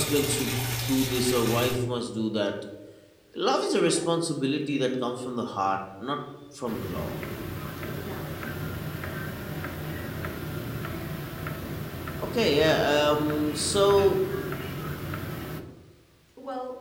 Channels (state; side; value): identical; both; correlation 1.00